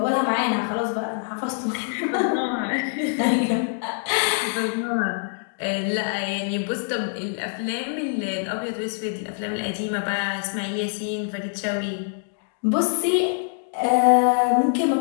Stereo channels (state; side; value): silent; right; digital silence